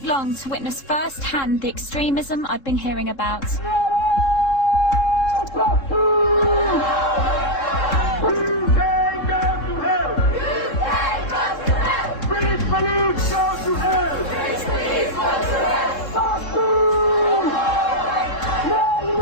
long to witness firsthand the extremism I'd been hearing about.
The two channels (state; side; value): late; right; 3.7 ms